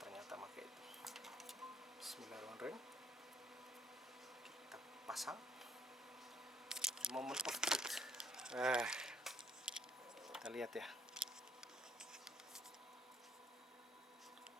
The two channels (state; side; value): normal; both; correlation 0.67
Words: ternyata pakai itu. Bismillahirrahmanirrahim, kita pasang. Moment of truth. Kita lihat ya,